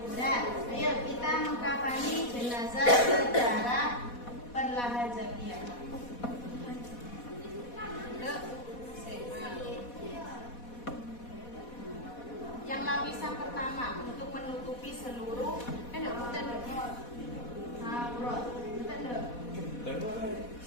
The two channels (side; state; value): right; late; 4.1 ms